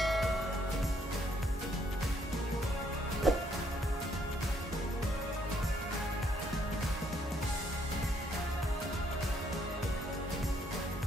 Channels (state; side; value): normal; both; correlation 0.69